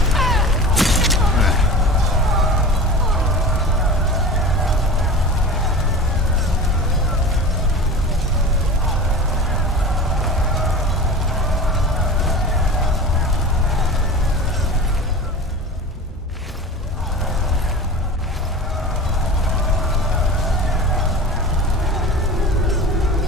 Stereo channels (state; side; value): normal; both; correlation 0.34